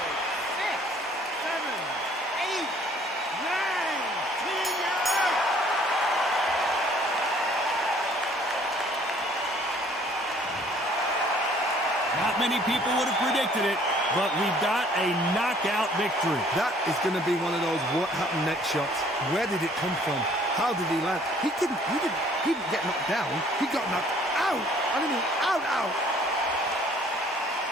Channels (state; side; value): normal; both; correlation 0.58